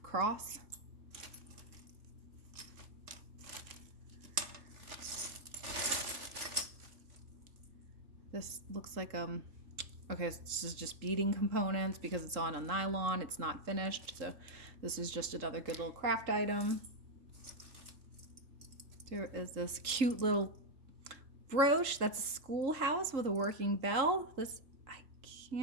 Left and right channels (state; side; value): late; left; 3.7 ms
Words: Cross. This looks like okay, this is just beading components because it's on a nylon. It's not finished, so this is just another good little craft item. There is this cute little brooch. That's a schoolhouse with a working bell. This, I